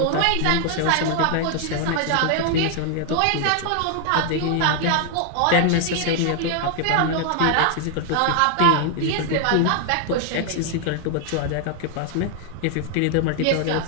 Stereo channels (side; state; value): both; different; correlation 0.00